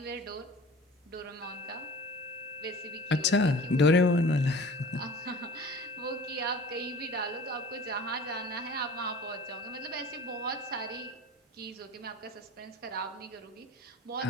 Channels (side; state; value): both; normal; correlation 0.42